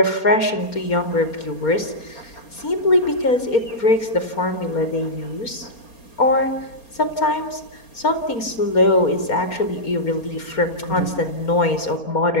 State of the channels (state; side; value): late; right; 4.3 ms